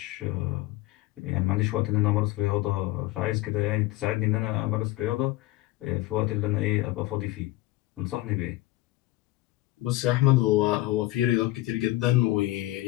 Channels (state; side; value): quieter; right; 18.0 dB